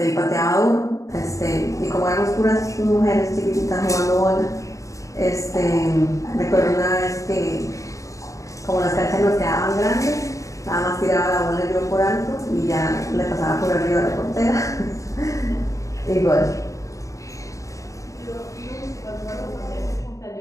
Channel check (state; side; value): late; right; 0.16 ms